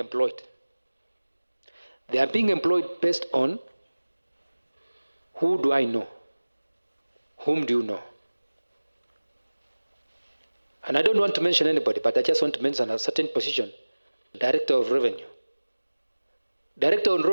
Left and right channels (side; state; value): both; inverted; correlation -1.00